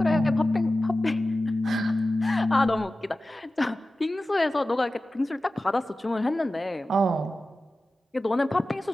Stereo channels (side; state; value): both; normal; correlation 0.95